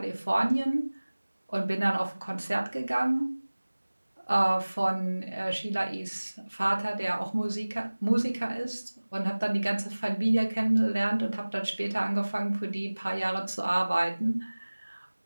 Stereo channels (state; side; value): inverted; both; correlation -1.00